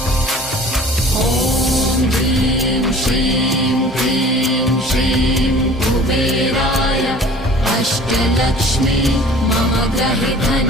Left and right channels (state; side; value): normal; both; correlation 0.47